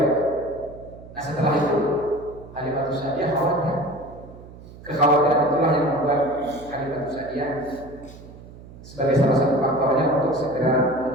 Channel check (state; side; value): noise; right; hum, 18 dB below the sound